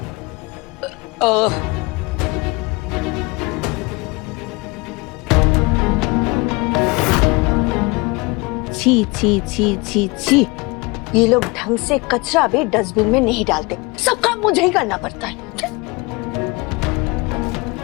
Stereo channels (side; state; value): right; quieter; 26.1 dB